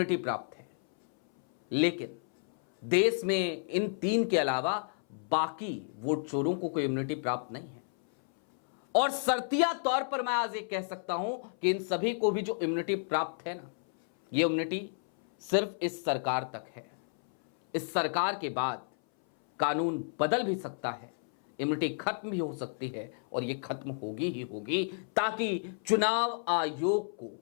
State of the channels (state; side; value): silent; right; 57 dB below the other